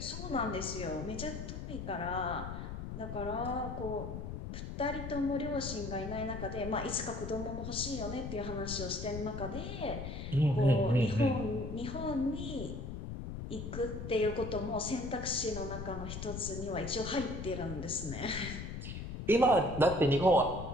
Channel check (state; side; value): noise; left; rumble, 7 dB below the sound